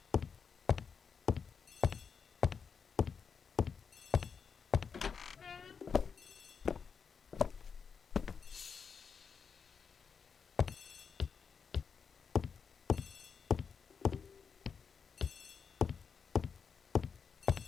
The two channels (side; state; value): right; quieter; 6.2 dB